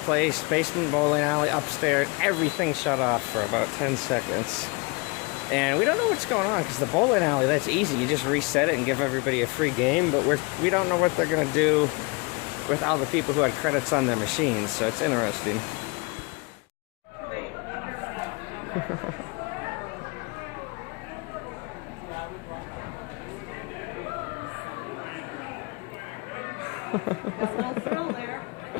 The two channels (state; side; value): quieter; right; 28.6 dB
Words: Basement, bowling alley, upstairs, everything shut off for about 10 seconds. And we don't know what's going on because the bowling alley, that's easy. You just reset it and give everybody a free game. But we don't know what they're going to do with all the people who had credits on their machines. So it's interesting.